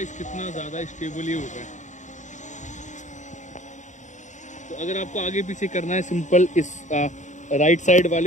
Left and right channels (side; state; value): right; late; 0.35 ms